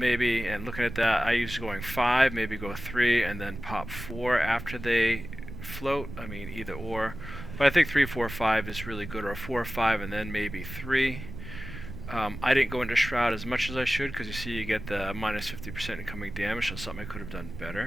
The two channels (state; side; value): noise; right; rumble, 10 dB below the sound